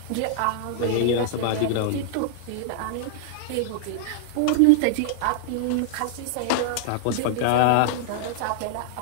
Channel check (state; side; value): different; both; correlation -0.01